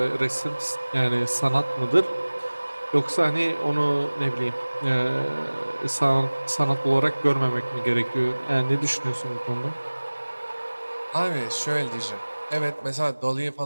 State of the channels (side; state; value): both; inverted; correlation -1.00